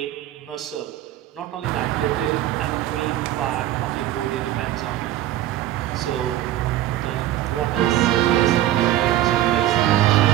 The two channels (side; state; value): left; quieter; 13.6 dB